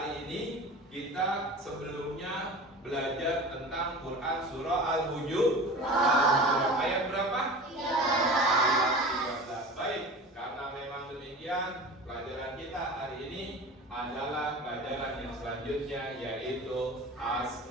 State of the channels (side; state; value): both; normal; correlation 0.36